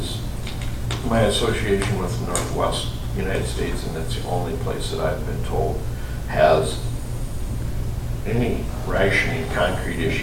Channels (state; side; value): identical; both; correlation 1.00